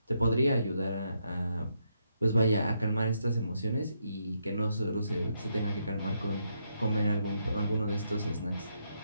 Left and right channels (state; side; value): inverted; both; correlation -0.79